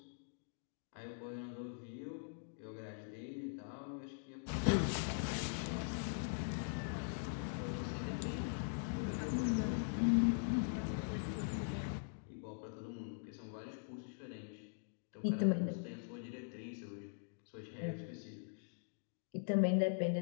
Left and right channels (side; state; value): right; silent; digital silence